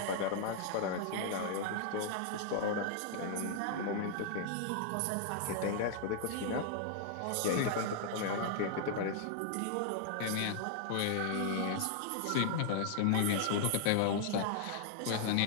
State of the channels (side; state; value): both; different; correlation 0.00